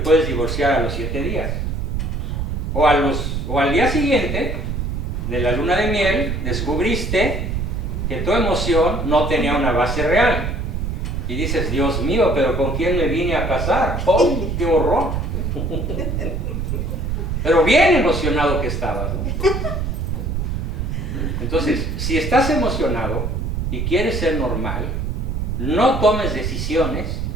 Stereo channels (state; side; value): noise; right; rumble, 2 dB below the sound